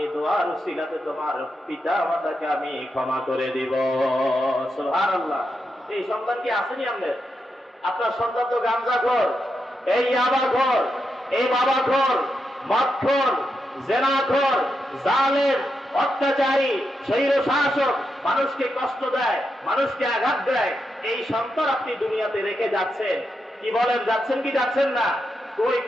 দোয়ার উসিলাতে তোমার পিতা মাতাকে আমি ক্ষমা করে দিব। সুবহানাল্লাহ। এই সন্তান কি আসেনি আমাদের? আপনার সন্তান তো গাঞ্জাখোর, এই ইয়াবাখোর, এই বাবাখোর, মদখোর, জেনাখোর, জালেম, অত্যাচারী, স্বৈর শাসক, মানুষকে কষ্ট দেয়, মানুষকে আঘাত দেয়, এই সন্তান আপনি দুনিয়াতে রেখে যাচ্ছেন। কি বলেন, যাচ্ছেন কি যাচ্ছেন না? ওই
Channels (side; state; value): both; normal; correlation 0.85